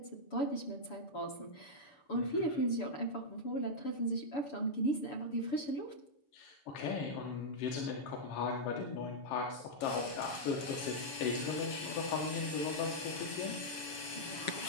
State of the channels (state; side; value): late; right; 7.3 ms